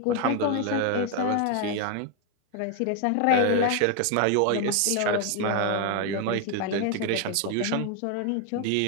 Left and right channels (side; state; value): both; different; correlation 0.01